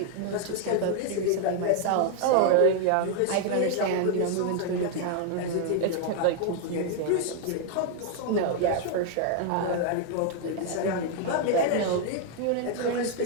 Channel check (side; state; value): both; different; correlation 0.00